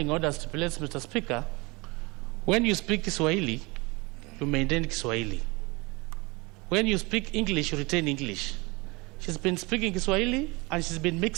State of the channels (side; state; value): left; quieter; 25.3 dB